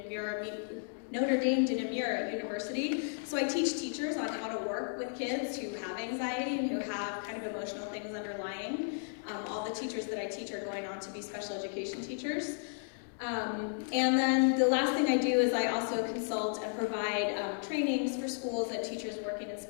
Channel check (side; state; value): right; silent; digital silence